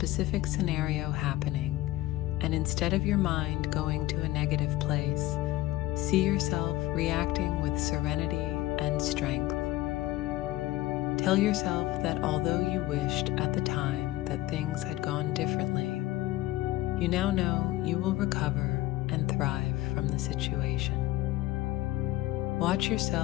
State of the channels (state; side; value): quieter; right; 16.9 dB